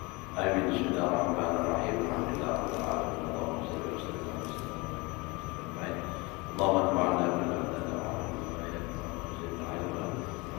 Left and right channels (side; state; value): right; quieter; 25.8 dB